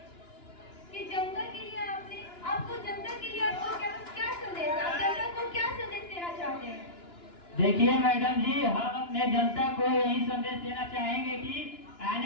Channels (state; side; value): late; right; 2.9 ms